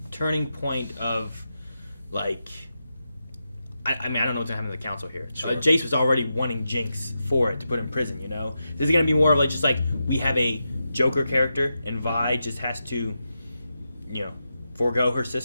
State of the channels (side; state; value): both; inverted; correlation -0.88